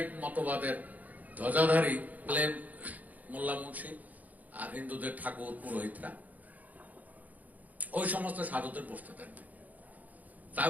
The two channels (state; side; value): late; left; 0.078 ms